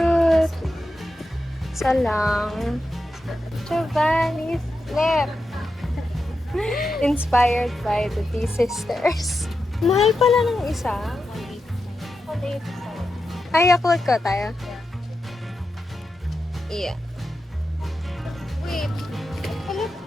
Isa lang. Giovanni's Flip. Inspired by the T Sisters. Mahal pala ng isa. Ay, Yakult ko tayo. Yeah. Wait.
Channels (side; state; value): both; normal; correlation 0.89